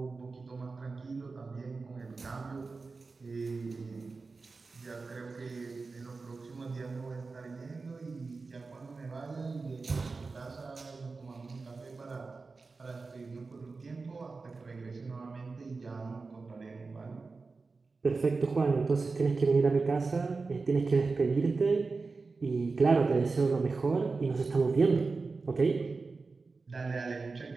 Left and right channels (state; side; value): quieter; left; 4.1 dB